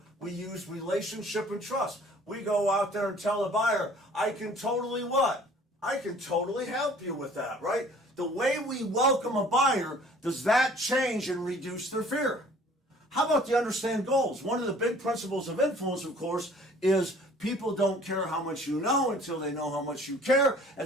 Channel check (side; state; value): both; normal; correlation 0.52